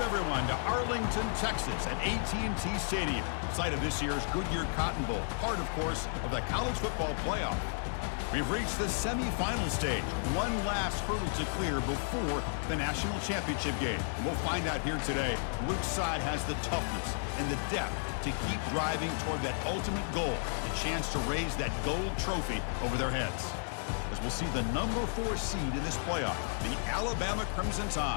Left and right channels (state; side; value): silent; right; digital silence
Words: everyone, to Arlington, Texas at AT&T Stadium, site of this year's Goodyear Cotton Bowl, part, of course, of the college football playoff. We've reached the semifinal stage, one last hurdle to clear before the national championship game. And we'll find out here today which side has the toughness and the depth to keep driving toward that ultimate goal, the chance to raise that gold trophy over their heads. As we'll see the number 4 seed in this playoff, the Alabama Crimson